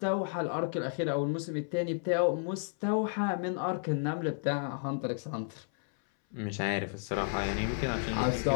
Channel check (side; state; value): right; silent; 56 dB below the other